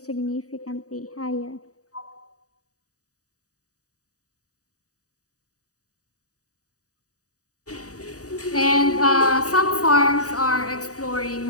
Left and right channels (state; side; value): late; right; 0.66 ms